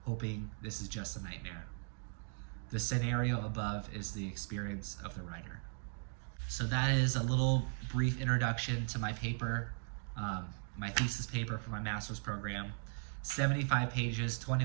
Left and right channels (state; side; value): silent; left; 53 dB below the other